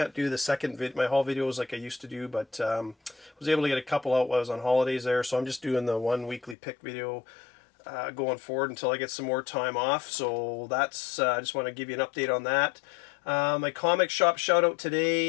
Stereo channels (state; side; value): drops out; right; at 6.6 s